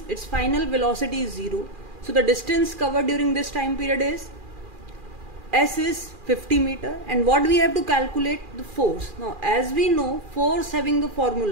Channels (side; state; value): left; late; 2.4 ms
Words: its final velocity is 0, so the distance covered during this time period is s is 50 meter. And what we have to calculate? The force. Now as we know, force having the